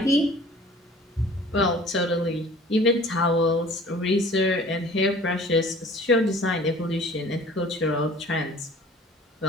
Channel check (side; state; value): both; normal; correlation 0.48